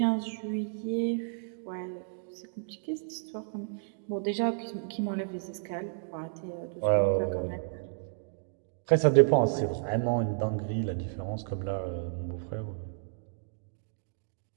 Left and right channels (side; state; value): left; silent; digital silence